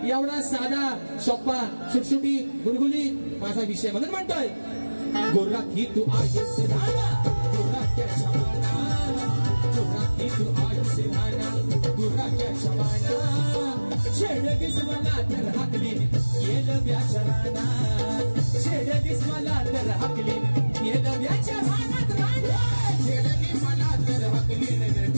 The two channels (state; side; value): inverted; both; correlation -1.00